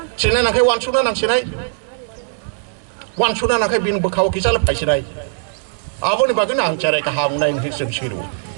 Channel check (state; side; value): silent; left; digital silence